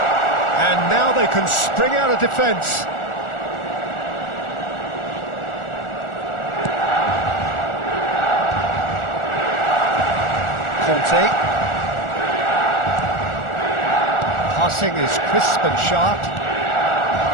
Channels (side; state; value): right; late; 1.4 ms